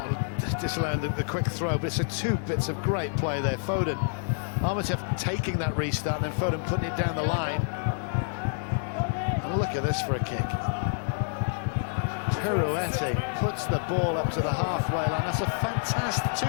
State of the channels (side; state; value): right; silent; digital silence